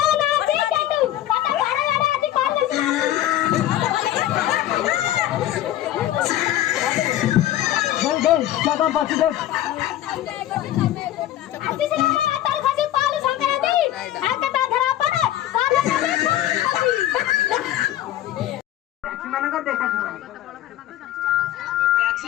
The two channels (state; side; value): quieter; right; 13.1 dB